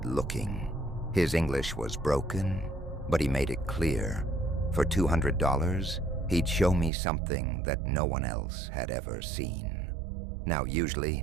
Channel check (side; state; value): left; drops out; at 6.9 s